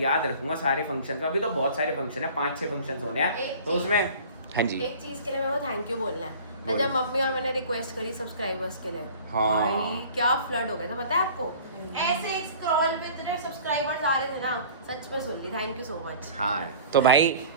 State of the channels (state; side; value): inverted; both; correlation -0.45